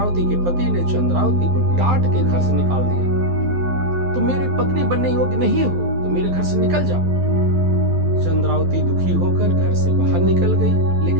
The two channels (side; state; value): left; late; 12 ms